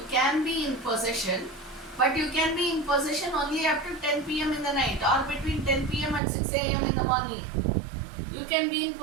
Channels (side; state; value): left; drops out; at 6.2 s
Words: be in possession, but you can be in possession only up to 10 p.m. in the night or between 10 p.m. and 6 a.m. in the morning. You can be in